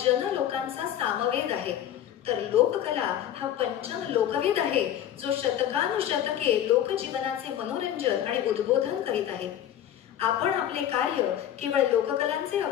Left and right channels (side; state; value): right; quieter; 11.0 dB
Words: लोकांचा सामवेद आहे, तर लोककला हा पंचम लोकवेद आहे, जो शतकानुशतके लोकजीवनाचे मनोरंजन आणि उद्बोधन करीत आहे. आपण आपले कार्य केवळ लोककलांचे